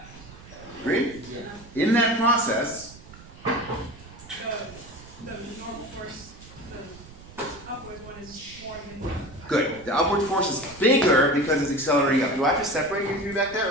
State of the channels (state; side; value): noise; right; rumble, 19 dB below the sound